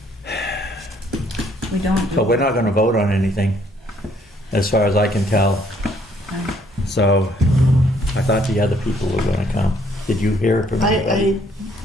We don't. So we're not going to vote on anything, as far as I can tell. So I thought the other people were going to come. Did you hear from anybody?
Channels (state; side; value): normal; both; correlation 0.65